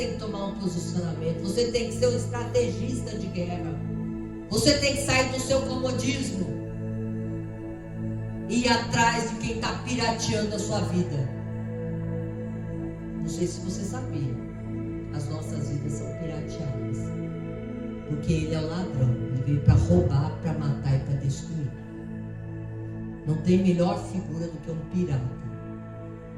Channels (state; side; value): identical; both; correlation 1.00